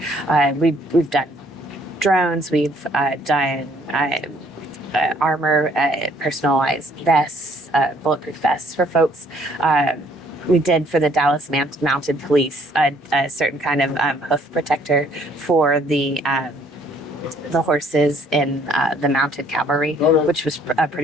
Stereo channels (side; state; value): both; normal; correlation 0.62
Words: We've done drones, we've done armor, personalized vests, bulletproof vests for folks. We did for the Dallas Mounted Police a certain kind of hoof protector for the horses in the mounted cavalry, which was a